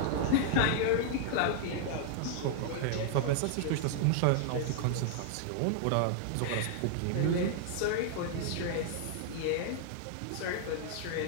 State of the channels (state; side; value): different; both; correlation -0.01